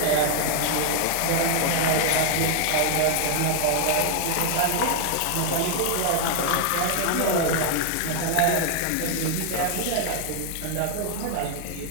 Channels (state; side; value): different; both; correlation 0.00